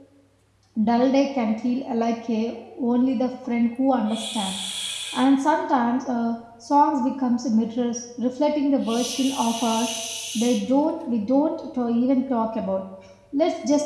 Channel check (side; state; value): both; identical; correlation 1.00